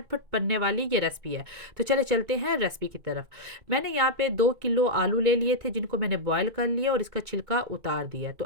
बनने वाली ये रेसिपी है। तो चले चलते हैं रेसिपी की तरफ। मैंने यहाँ पे 2 किलो आलू ले लिए थे, जिनको मैंने बॉयल कर लिया और इसका छिलका उतार दिया। तो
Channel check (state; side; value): late; left; 2.2 ms